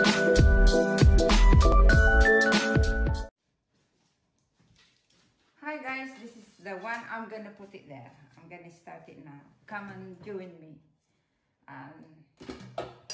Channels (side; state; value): both; identical; correlation 1.00